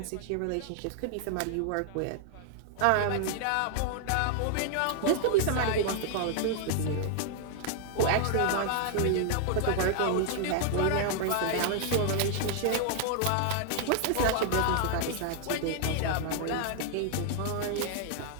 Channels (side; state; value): both; different; correlation 0.00